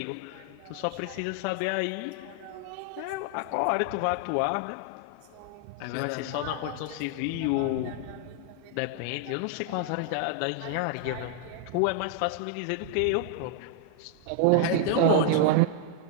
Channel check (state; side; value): different; both; correlation 0.00